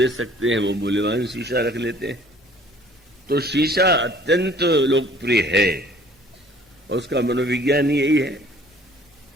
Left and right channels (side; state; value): both; normal; correlation 0.54